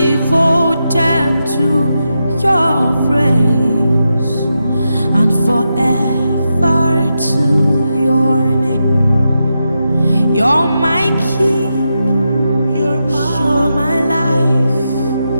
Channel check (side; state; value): both; inverted; correlation -0.87